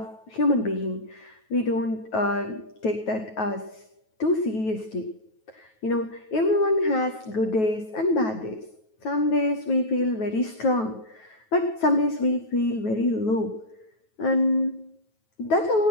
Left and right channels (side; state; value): right; late; 9.2 ms